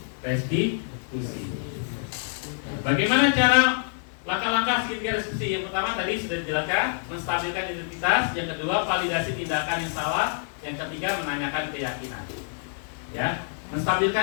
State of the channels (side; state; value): right; silent; digital silence